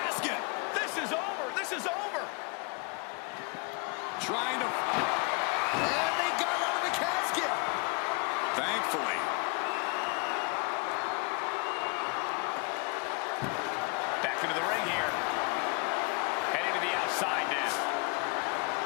This is over. This is over. Trying to... And they got out of the casket. Thankfully. Back into the ring here. Heading to the outside now.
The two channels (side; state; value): right; quieter; 32.7 dB